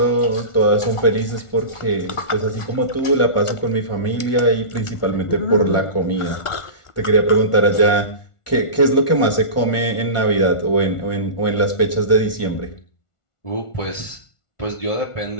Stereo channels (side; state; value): right; late; 1.4 ms